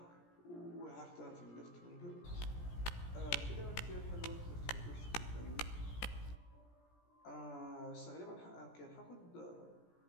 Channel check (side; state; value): right; late; 17 ms